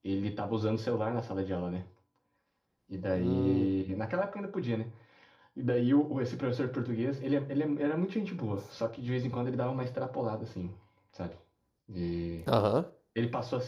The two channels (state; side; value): identical; both; correlation 1.00